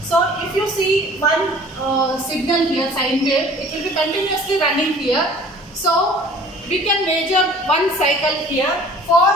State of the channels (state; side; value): normal; both; correlation 0.49